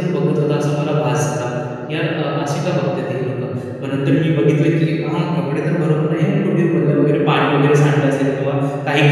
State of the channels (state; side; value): identical; both; correlation 1.00